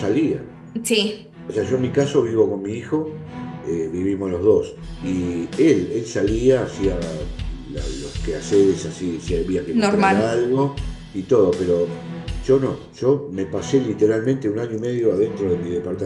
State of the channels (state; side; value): identical; both; correlation 1.00